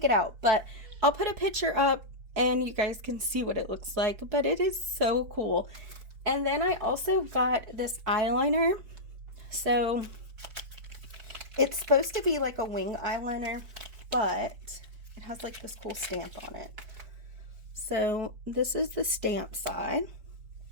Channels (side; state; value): left; late; 5.0 ms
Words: it out, but I'll put a picture up and you guys can see what it looks like. But it is so cool. And then I also got this eyeliner. So it's supposed to be like a wing eyeliner, but it has like this cool stamp on it. So this is the stamp side.